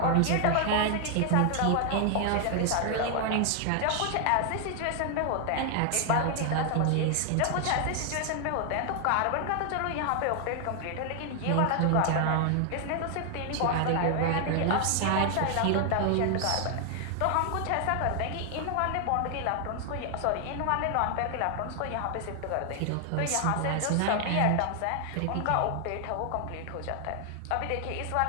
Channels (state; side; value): different; both; correlation 0.00